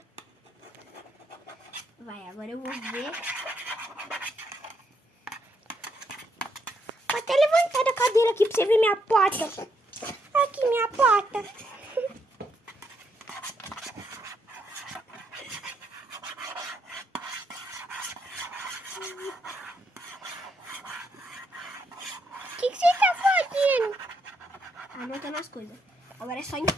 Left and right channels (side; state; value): both; normal; correlation 0.76